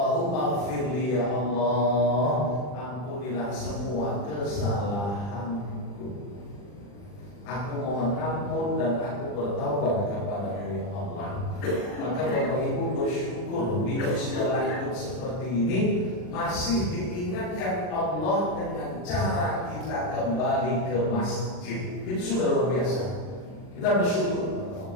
ighfirli ya Allah, ampunilah semua kesalahanku. Aku mohon ampun dan aku bertaubat kepada-Mu ya Allah. Maka Bapak Ibu bersyukur di usia lanjut seperti ini masih diingatkan Allah dengan cara kita kembali ke masjid. Itu sudah luar biasa. Kita bersyukur kepada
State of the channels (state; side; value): late; right; 40 ms